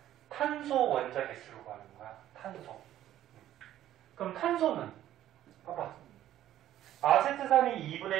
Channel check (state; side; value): quieter; left; 12.6 dB